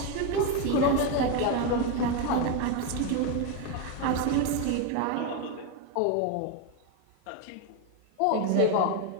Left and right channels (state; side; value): different; both; correlation 0.02